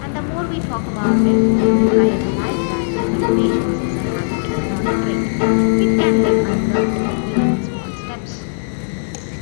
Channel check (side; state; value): right; silent; digital silence